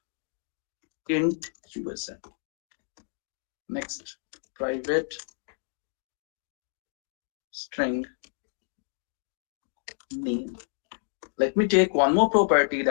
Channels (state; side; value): silent; right; digital silence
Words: int USN. Next, private string name. Let me take one more property,